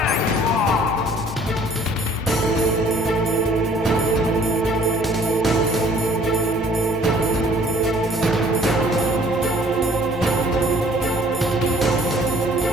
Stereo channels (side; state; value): both; normal; correlation 0.56